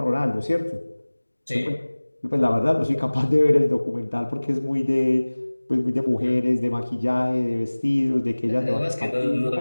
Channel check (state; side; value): inverted; both; correlation -1.00